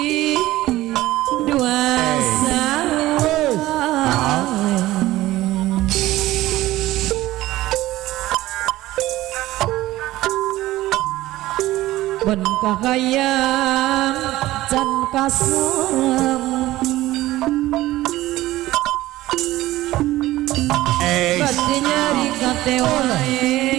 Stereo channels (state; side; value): quieter; left; 16.5 dB